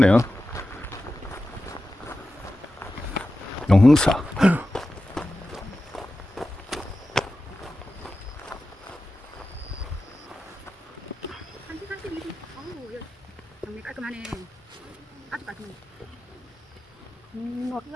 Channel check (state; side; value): normal; both; correlation 0.93